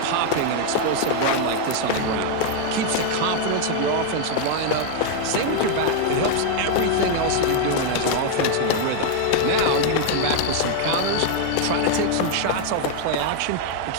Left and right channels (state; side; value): different; both; correlation 0.01